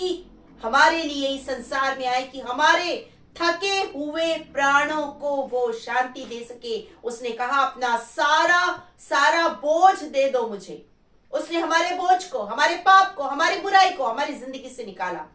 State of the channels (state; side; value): identical; both; correlation 1.00